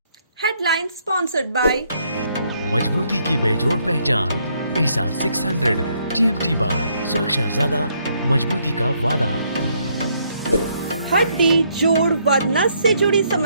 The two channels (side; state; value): both; inverted; correlation -0.71